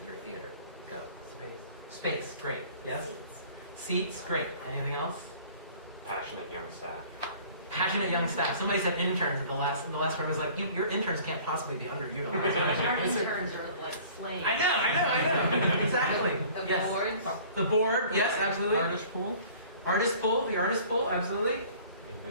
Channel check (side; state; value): both; inverted; correlation -0.50